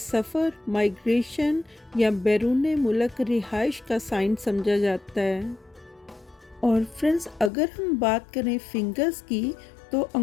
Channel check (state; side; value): drops out; right; at 7.5 s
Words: माइग्रेशन या बैरून मुल्क रिहाइश का साइन समझा जाता है। और फ्रेंड्स, अगर हम बात करें फिंगर्स की तो